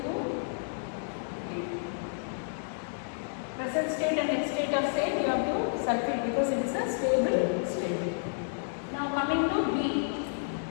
D2. Present state and next state are same. You have to circle because it is a stable state. Now coming to B.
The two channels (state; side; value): silent; right; digital silence